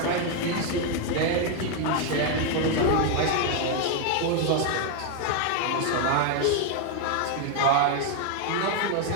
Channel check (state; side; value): different; both; correlation 0.01